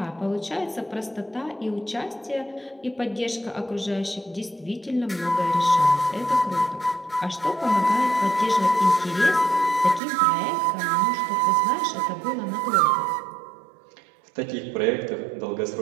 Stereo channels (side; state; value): left; drops out; at 10.0 s